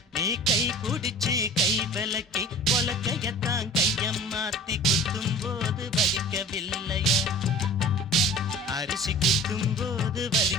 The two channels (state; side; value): normal; both; correlation 0.43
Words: நீ கை புடிச்சு கை விலக்கி உலக்கையத்தான் கையம் மாத்தி குத்தும் போது வலிக்கவில்லையா? அரிசி குத்தும் போது